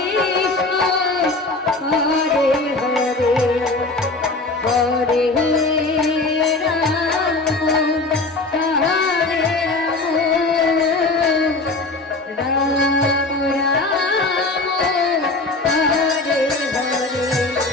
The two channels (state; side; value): quieter; right; 3.2 dB